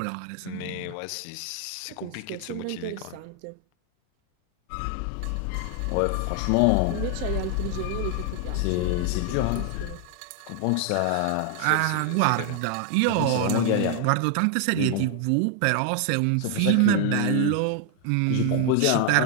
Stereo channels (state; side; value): different; both; correlation 0.00